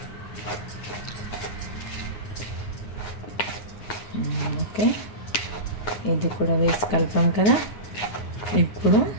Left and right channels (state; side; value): late; right; 9.6 ms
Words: ఓకే, ఇది కూడా వేసి కలిపాం కదా. ఇప్పుడు